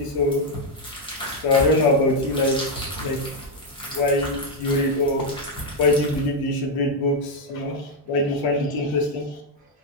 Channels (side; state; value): both; normal; correlation 0.02